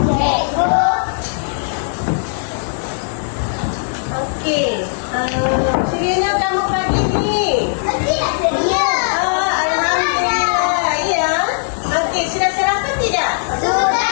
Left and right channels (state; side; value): silent; right; digital silence